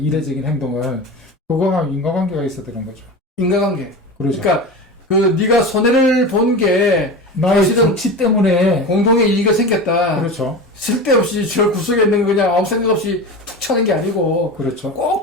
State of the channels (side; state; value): both; normal; correlation 0.28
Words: 행동을. 그거가 인과관계가 있어야 되는 거죠. 인과관계. 그렇죠. 그러니까 그 네가 손해를 본 게 나의 사실은 조치 때문에. 공동의 이익이 생겼다. 그렇죠. 쓸데없이 저 구석에 있는 거 그냥 아무 생각 없이 툭 차는 게 아니고 그렇죠. 꼭